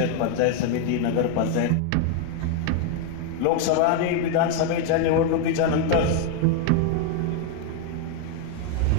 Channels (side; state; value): both; different; correlation 0.00